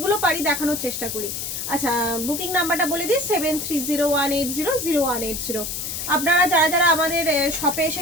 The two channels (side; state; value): left; noise; hiss, 5 dB below the sound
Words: পারি দেখানোর চেষ্টা করি। আচ্ছা, বুকিং নাম্বারটা বলে দিই 7301800180। আপনারা যারা যারা আমাদের শপে এসে